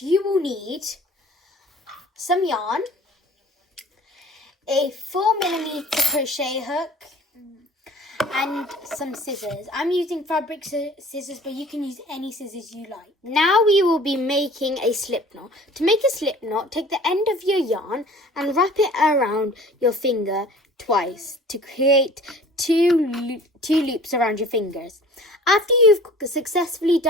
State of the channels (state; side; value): normal; both; correlation 0.48